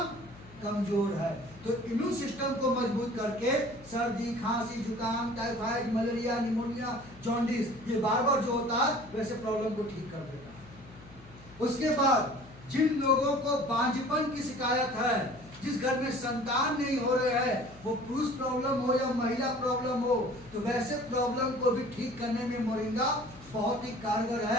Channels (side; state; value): left; noise; hum, 21 dB below the sound